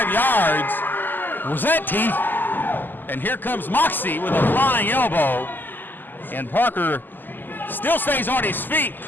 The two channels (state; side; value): late; right; 0.089 ms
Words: yards. Was that teeth? And here comes Moxie with a flying elbow. And Parker still stays on his feet.